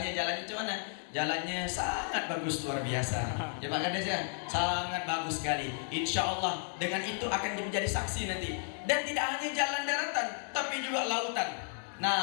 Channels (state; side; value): silent; right; 55 dB below the other